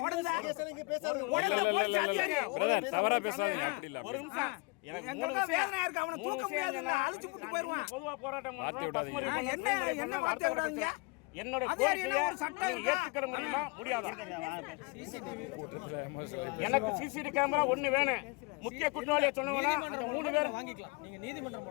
ஓடுதா போலீஸ் அதிகாரி தவறா பேசாதீங்க. அப்படி இல்ல. ஒரு நிமிஷம் எங்களுக்கு வேதனையா இருக்கு. அவனை தூக்க முடியாது. அழிச்சு புட்டு போயிடுவான். பொதுவா போராட்டம் பண்றோம். என்ன வார்த்தை விடாதீங்க. என்னோட ஒரு சட்டம் ஏத்துக்கிற முடியாதா? எனக்கு சிசிடிவி கேமரா ஒண்ணு வேணும். முக்கிய குற்றவாளியை சொன்னவனா அந்த 3 பேர் வாங்கிக்கலாம். நீங்க நீதிமன்றம்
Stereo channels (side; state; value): right; quieter; 28.2 dB